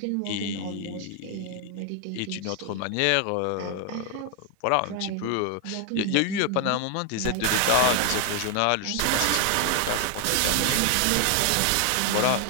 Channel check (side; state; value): both; different; correlation 0.00